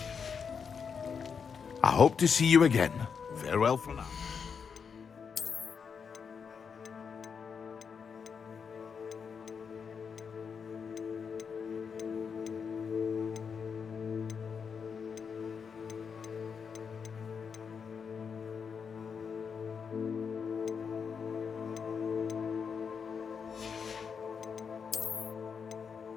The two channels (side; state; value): right; quieter; 6.3 dB